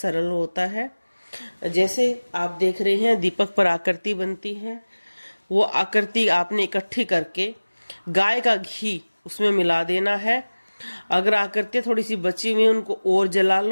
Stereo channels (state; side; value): inverted; both; correlation -1.00